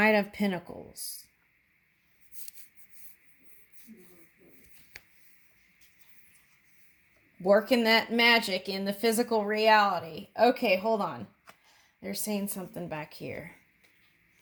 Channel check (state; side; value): identical; both; correlation 1.00